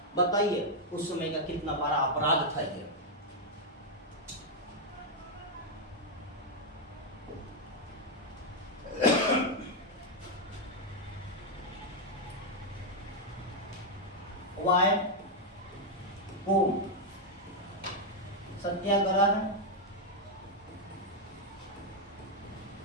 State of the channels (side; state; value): both; normal; correlation 0.00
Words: बताइए उस समय का कितना बड़ा अपराध था ये। वाय कोम सत्याग्रह